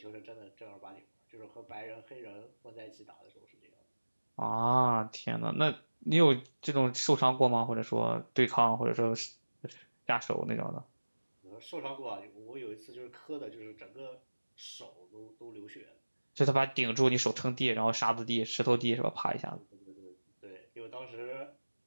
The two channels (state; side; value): inverted; both; correlation -1.00